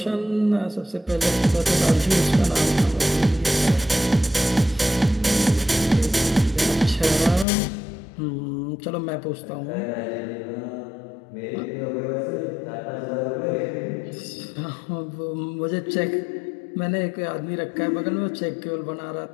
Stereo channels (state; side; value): drops out; right; at 7.5 s